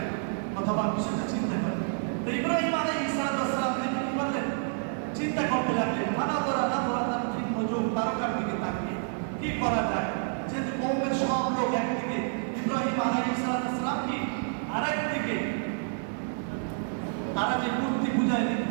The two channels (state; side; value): silent; left; digital silence